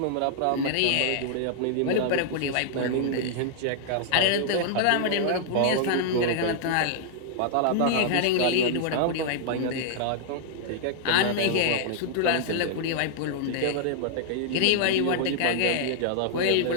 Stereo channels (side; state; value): both; different; correlation -0.01